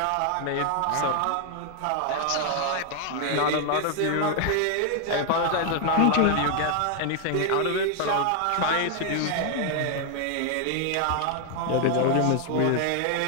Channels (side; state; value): both; different; correlation 0.00